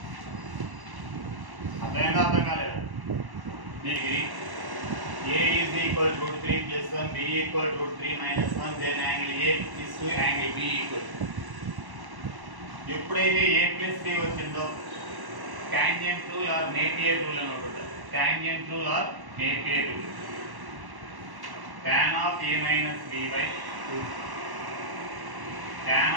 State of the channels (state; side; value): late; left; 1.1 ms